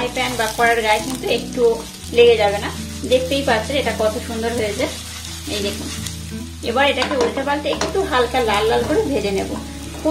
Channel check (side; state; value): both; identical; correlation 1.00